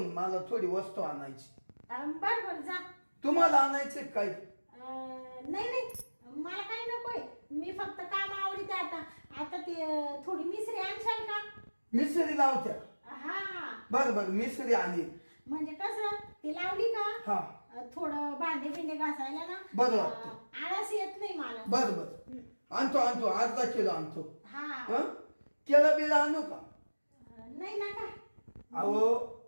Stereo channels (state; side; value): inverted; both; correlation -1.00